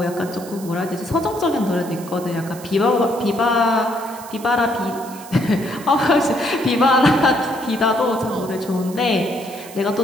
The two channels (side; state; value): right; noise; hiss, 17 dB below the sound